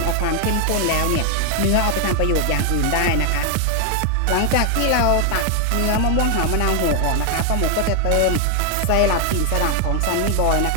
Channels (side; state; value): both; different; correlation 0.00